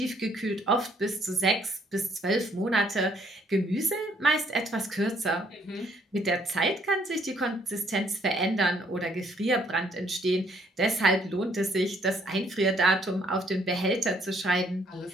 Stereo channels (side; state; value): both; normal; correlation 0.66